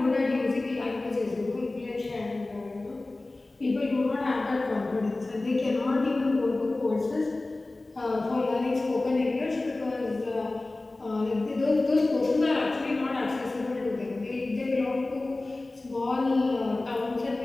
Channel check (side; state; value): right; quieter; 3.0 dB